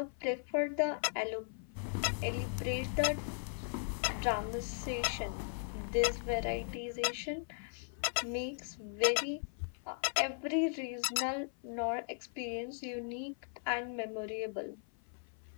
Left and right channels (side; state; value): right; silent; 53 dB below the other